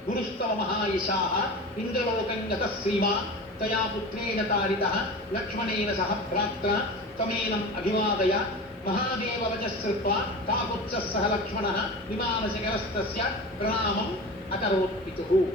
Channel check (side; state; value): both; normal; correlation 0.32